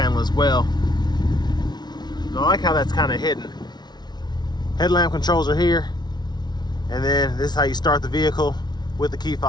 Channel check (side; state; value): right; late; 0.20 ms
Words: as well. And I like how that's kind of hidden. Headlamp controls are here, and then this is how you start the vehicle with the key